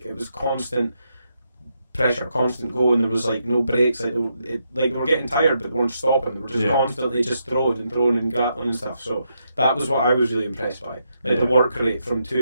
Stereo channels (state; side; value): inverted; both; correlation -0.81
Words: it was constant pressure, constant going. There was like no breaks. Like they were getting tired, but they weren't stopping. They were just constantly just throwing and grappling and stuff. So that was what I was really impressed by. Like the work rate from